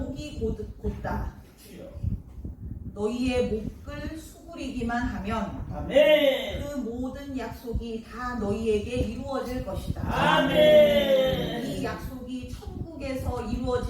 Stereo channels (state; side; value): identical; both; correlation 1.00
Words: 곧다. 너희의 목을 수그리기만 하면 그 모든 약속이 다 너희에게 이루어질 것이다. 이 약속이 천국에서